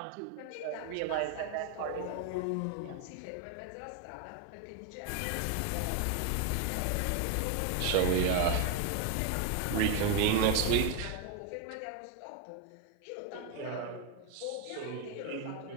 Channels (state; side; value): different; both; correlation 0.01